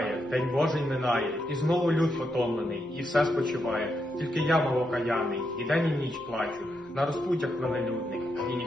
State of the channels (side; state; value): both; normal; correlation 0.82